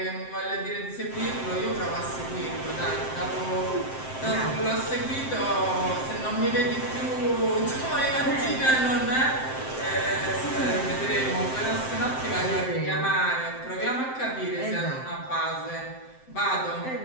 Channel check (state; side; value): late; right; 7.7 ms